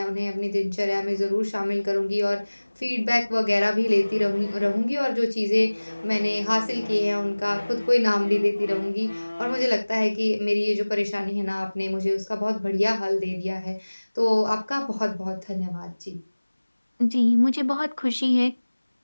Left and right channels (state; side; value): inverted; both; correlation -1.00